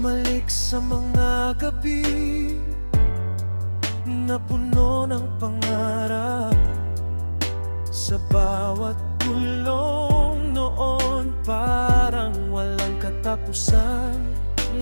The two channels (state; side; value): inverted; both; correlation -1.00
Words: sa mga gabi na puno ng pangarap. Sa bawat tulong noon parang walang katapusan.